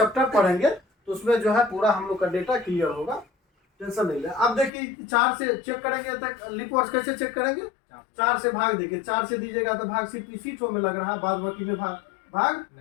पढ़ेंगे तो उसमें जो है पूरा हम लोग का डेटा क्लियर होगा। टेंशन नहीं ले। अब देखिए 4 से चेक करेंगे तो लीप वर्ष कैसे चेक करेंगे? 4 से भाग देखिए। 4 से दीजिएगा तो भाग सिर्फ इसी ठो में लग रहा है, बाद बाकी में भाग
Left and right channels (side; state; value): right; drops out; at 4.7 s